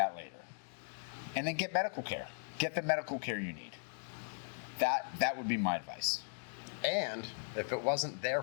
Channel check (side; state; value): right; silent; digital silence